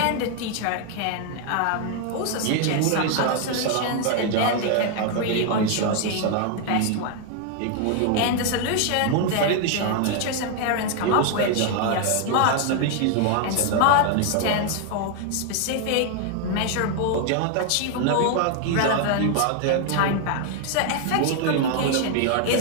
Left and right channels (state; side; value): different; both; correlation 0.00